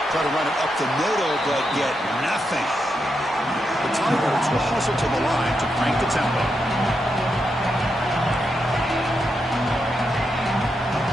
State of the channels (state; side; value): normal; both; correlation 0.84